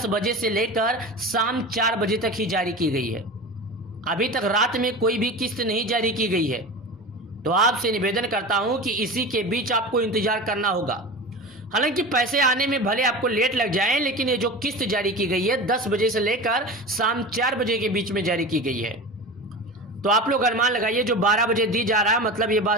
बजे से लेकर शाम 4 बजे तक ही जारी की गई है। अभी तक रात में कोई भी किस्त नहीं जारी की गई है। तो आपसे निवेदन करता हूं कि इसी के बीच आपको इंतजार करना होगा। हालांकि पैसे आने में भले आपको लेट लग जाए, लेकिन ये जो किस्त जारी की गई है 10 बजे से लेकर शाम 4 बजे के बीच में जारी की गई है। तो आप लोग अनुमान लगाइए, जो 12 बजे दी जा रहा है, मतलब ये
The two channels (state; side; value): normal; both; correlation 0.30